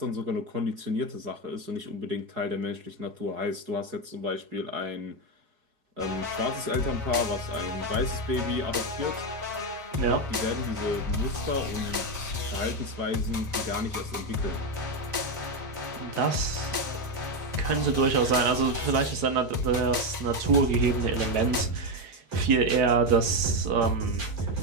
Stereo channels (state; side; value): late; left; 4.8 ms